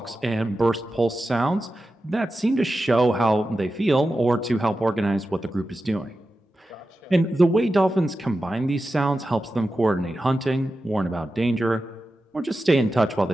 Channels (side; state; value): both; normal; correlation 0.92